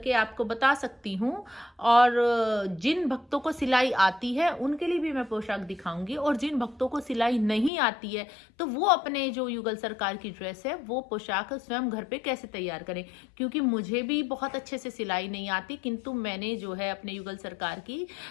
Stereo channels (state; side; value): drops out; right; at 7.7 s